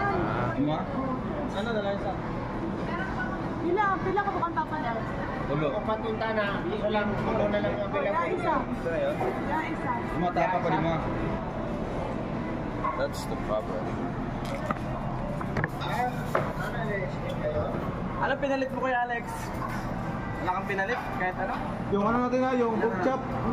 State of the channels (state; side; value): identical; both; correlation 1.00